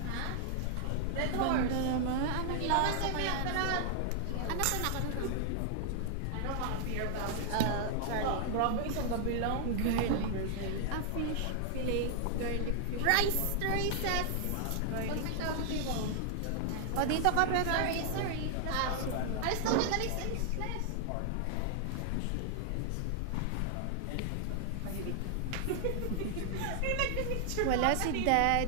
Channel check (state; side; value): different; both; correlation 0.00